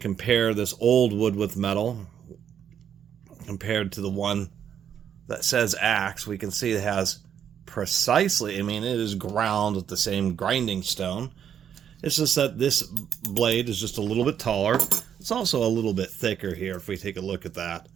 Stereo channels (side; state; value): left; quieter; 8.8 dB